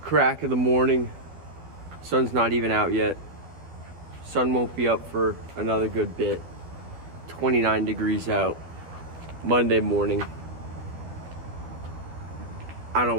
crack of the morning. Sun's not even out yet. Sun won't be up for another good bit. 29 degrees out. Monday morning. I don't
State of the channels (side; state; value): left; late; 12 ms